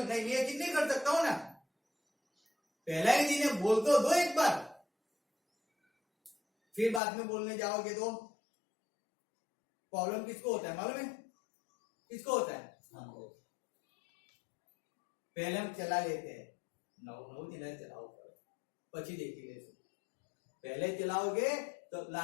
नहीं, ये चीज नहीं कर सकता हूं ना। पहला ही दिन है, बोल तो दो एक बार, फिर बाद में बोलने जाओगे तो प्रॉब्लम किसको होता है मालूम है? किसको होता है? पहले हम चला लेते हैं, 9 दिन चलाओ, पची देखी ले, पहले चलाओगे तो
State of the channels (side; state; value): right; drops out; at 7.0 s